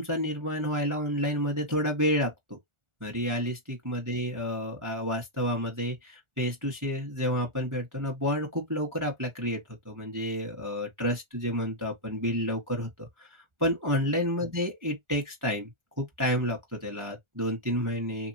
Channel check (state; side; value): late; left; 1.4 ms